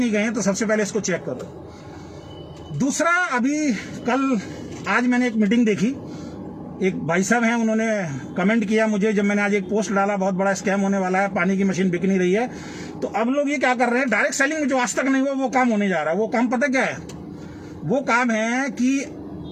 गए हैं, तो सबसे पहले इसको चेक करो। दूसरा, अभी कल आज मैंने एक मीटिंग देखी, एक भाई साहब हैं, उन्होंने कमेंट किया मुझे जब मैंने आज एक पोस्ट डाला, बहुत बड़ा स्कैम होने वाला है, पानी की मशीन बिक नहीं रही है। तो अब लोग ये क्या कर रहे हैं, डायरेक्ट सेलिंग में जो आज तक नहीं हुआ वो काम होने जा रहा है। वो काम पता क्या है? वो काम है कि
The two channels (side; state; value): both; identical; correlation 1.00